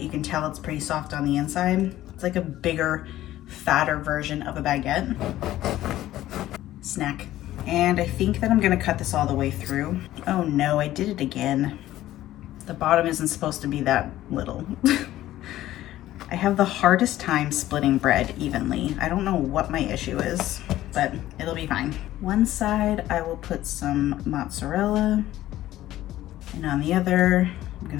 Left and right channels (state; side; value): quieter; right; 14.4 dB